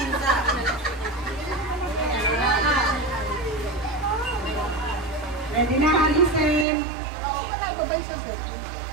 Ready na, listen.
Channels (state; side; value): drops out; left; at 6.7 s